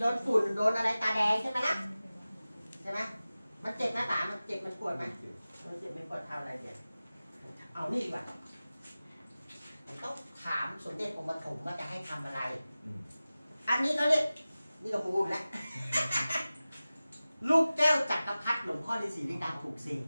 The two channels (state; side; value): inverted; both; correlation -0.97